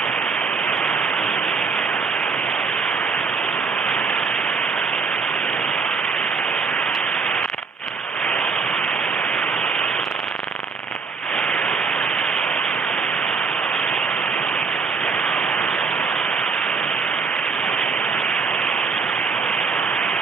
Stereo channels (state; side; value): quieter; left; 5.1 dB